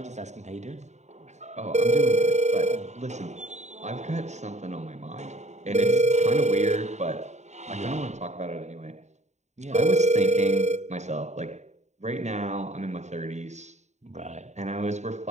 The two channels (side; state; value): left; late; 0.34 ms